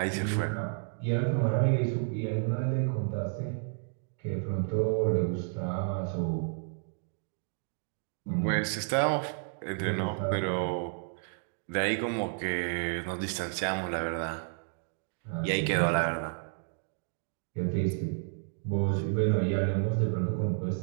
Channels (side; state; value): left; silent; 57 dB below the other